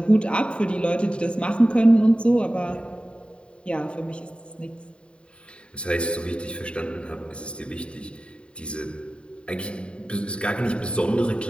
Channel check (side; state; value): right; late; 0.055 ms